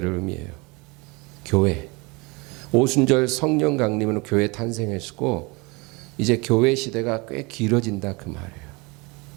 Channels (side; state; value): left; quieter; 26.9 dB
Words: 의미해요. 교회. 오순절 성령 강림으로 교회 탄생했고 이제 교회 시대가 꽤 길어진다 그 말이에요.